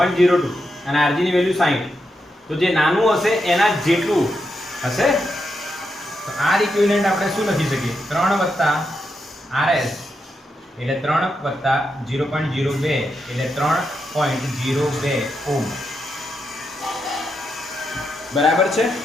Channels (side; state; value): both; normal; correlation 0.84